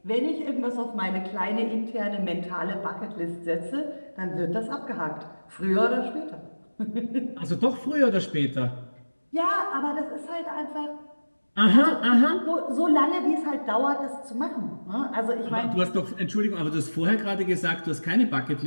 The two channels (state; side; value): inverted; both; correlation -1.00